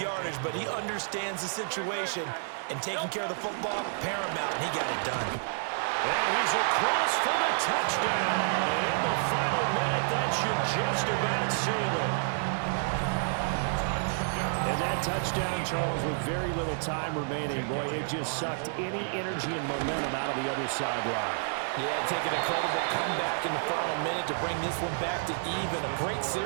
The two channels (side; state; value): left; silent; 58 dB below the other